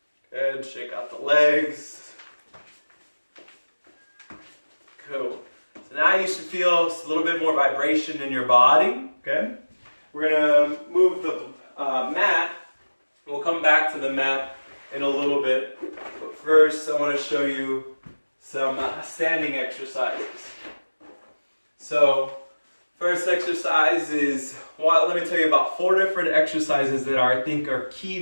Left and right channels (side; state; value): both; inverted; correlation -1.00